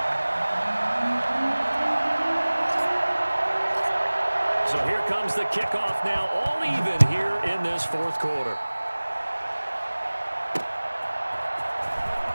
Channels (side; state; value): both; inverted; correlation -1.00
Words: So here comes the kickoff now, all even here in this 4th quarter.